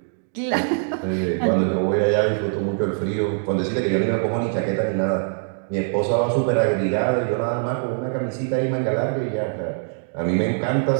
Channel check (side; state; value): left; silent; digital silence